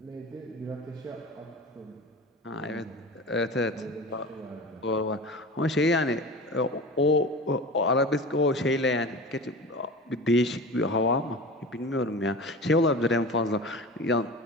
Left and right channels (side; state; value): both; normal; correlation 0.33